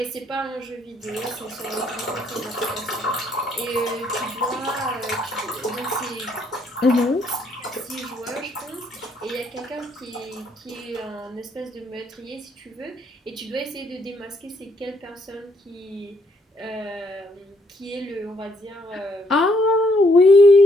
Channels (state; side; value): normal; both; correlation 0.70